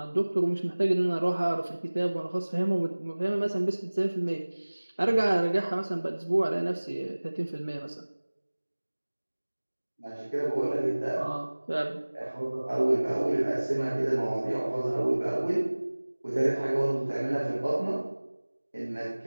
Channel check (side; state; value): both; inverted; correlation -1.00